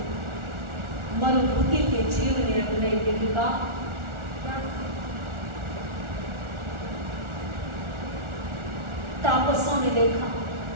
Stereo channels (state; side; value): late; left; 1.4 ms